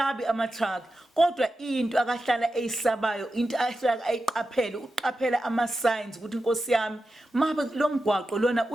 ama-truck kodwa into akahlala eyisabayo into ahlala ayiqaphele uqaphela ama-signs ukuthi inkosi yami mabe lo mgwaqo lona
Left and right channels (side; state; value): both; normal; correlation 0.91